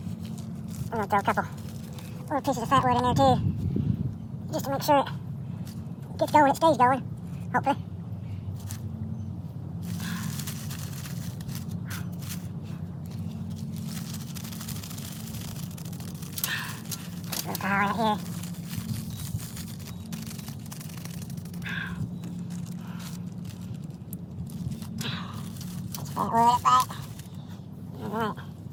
I'm going to throw a couple little pieces of fat wood in there too. Just to make sure it gets going, it stays going, hopefully. Just a little pile right here. Just fat wood up right. Alright.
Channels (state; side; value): identical; both; correlation 1.00